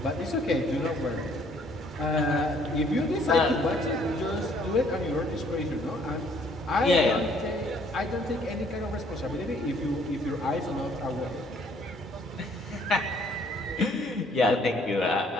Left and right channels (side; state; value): both; normal; correlation 0.62